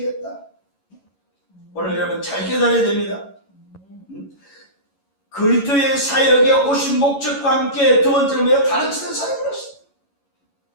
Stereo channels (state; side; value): late; right; 11 ms